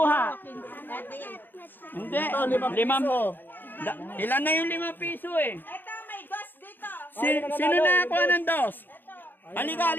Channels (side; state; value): right; late; 0.092 ms